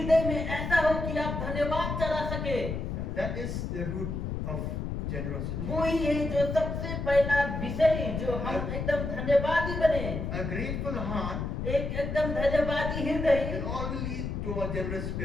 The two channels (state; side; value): noise; left; rumble, 3 dB below the sound